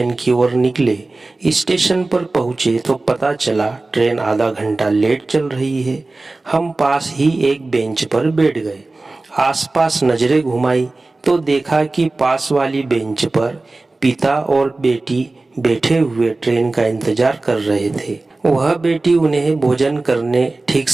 की ओर निकले। स्टेशन पर पहुंचे तो पता चला ट्रेन आधा घंटा लेट चल रही है। हम पास ही एक बेंच पर बैठ गए। आसपास नजरें घुमाई तो देखा कि पास वाली बेंच पर पिता और बेटी बैठे हुए ट्रेन का इंतजार कर रहे थे। वह बेटी उन्हें भोजन करने, ठीक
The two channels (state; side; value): quieter; left; 3.2 dB